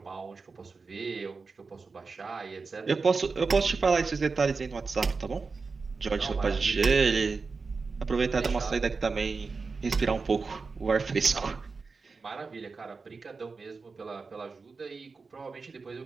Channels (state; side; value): quieter; left; 4.5 dB